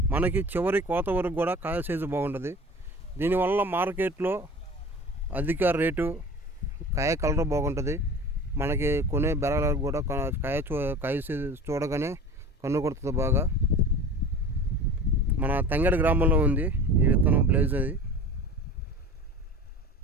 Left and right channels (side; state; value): both; normal; correlation 0.39